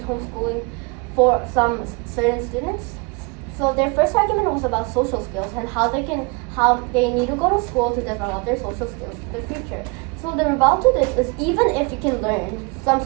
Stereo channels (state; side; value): quieter; left; 30.1 dB